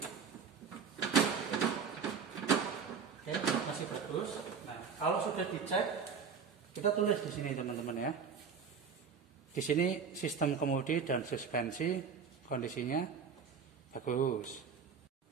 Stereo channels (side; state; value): left; quieter; 6.2 dB